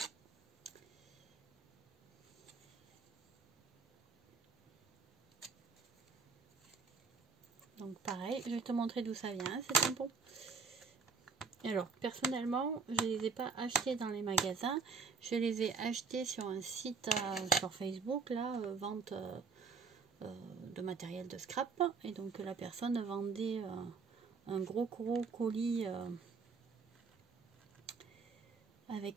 Donc pareil, je vais te montrer d'où ça vient, ces tampons. Alors, personnellement, je ne les ai pas achetés dans les magasins. Je les ai achetés sur un site sur Facebook, là, vente de matériel de scrap. Et donc, la personne vendait un gros colis avec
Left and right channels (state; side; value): quieter; left; 5.0 dB